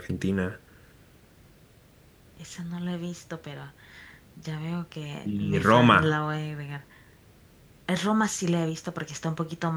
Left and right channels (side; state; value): both; identical; correlation 1.00